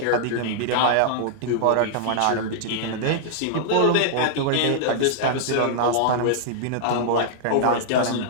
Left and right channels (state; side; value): different; both; correlation -0.01